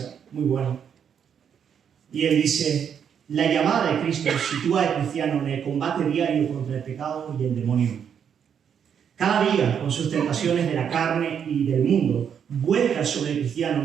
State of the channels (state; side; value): quieter; left; 7.9 dB